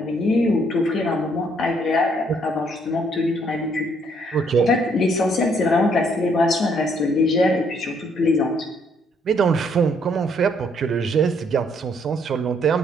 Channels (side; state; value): both; normal; correlation 0.68